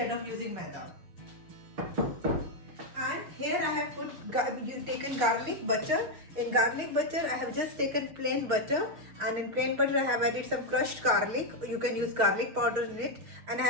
of using maida. And here I have taken garlic butter. In garlic butter I have just taken plain butter, and in plain butter I have added some crushed garlic. You can use garlic powder in it, and I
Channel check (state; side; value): late; left; 6.5 ms